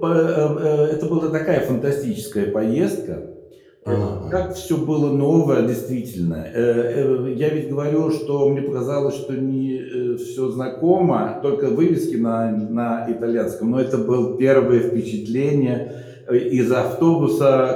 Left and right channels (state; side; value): identical; both; correlation 1.00